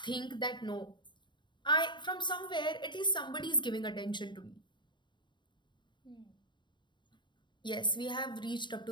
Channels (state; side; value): late; right; 0.22 ms